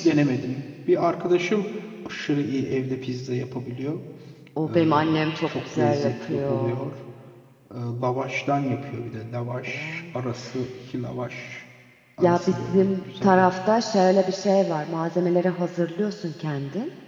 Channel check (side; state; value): both; identical; correlation 1.00